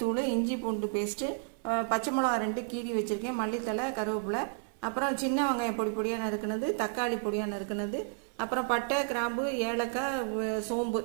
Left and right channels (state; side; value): silent; left; digital silence